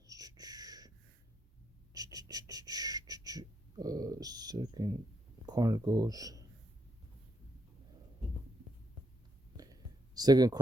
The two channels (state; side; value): normal; both; correlation 0.76